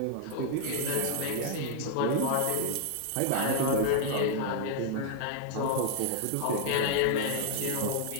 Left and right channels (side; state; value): both; different; correlation 0.00